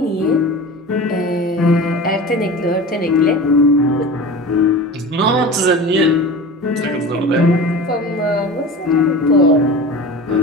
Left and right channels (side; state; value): both; normal; correlation 0.34